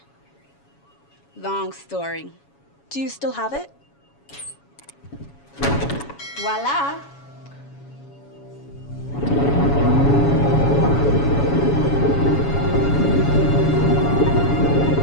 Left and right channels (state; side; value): late; right; 7.2 ms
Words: Long story. Do you still have it? Voila.